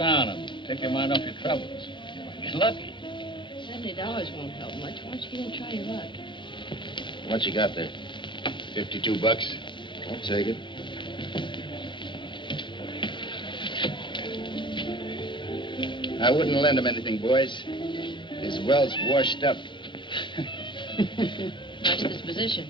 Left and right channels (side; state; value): right; late; 0.23 ms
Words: and take your mind off your troubles? You might get lucky. $70 won't help much. Why don't you get in and try your luck? What you got there? $52. I'll take it. I wouldn't lend him anything, boys. His well's washed up. Nice disposition.